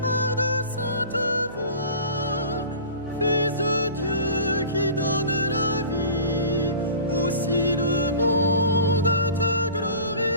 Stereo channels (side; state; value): both; inverted; correlation -0.41